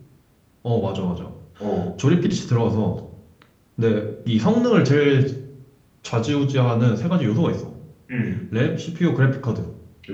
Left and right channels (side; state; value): both; identical; correlation 1.00